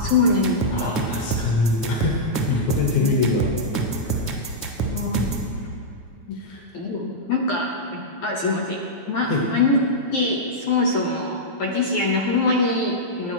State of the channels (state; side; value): late; right; 9.2 ms